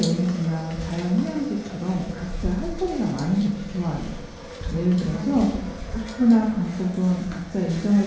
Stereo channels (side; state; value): both; identical; correlation 1.00